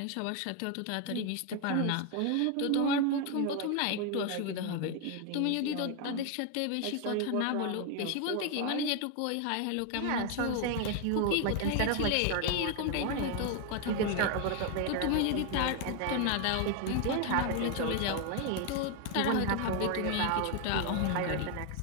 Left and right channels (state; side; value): different; both; correlation 0.01